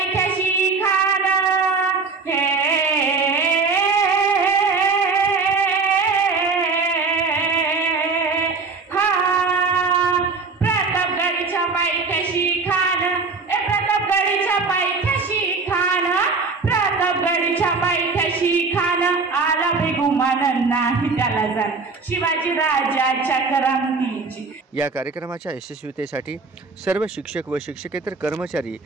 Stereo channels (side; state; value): left; quieter; 4.4 dB